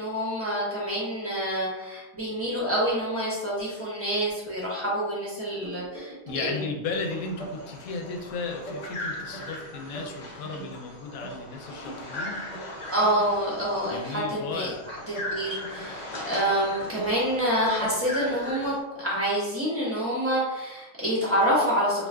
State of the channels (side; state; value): both; normal; correlation -0.03